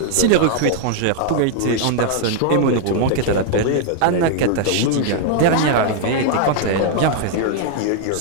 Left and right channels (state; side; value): different; both; correlation -0.01